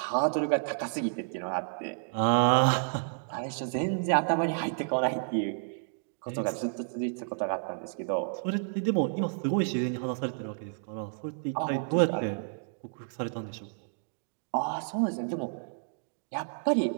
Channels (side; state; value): left; silent; digital silence